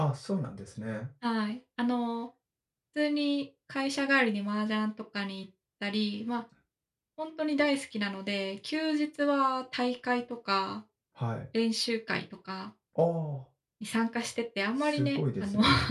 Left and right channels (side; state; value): both; identical; correlation 1.00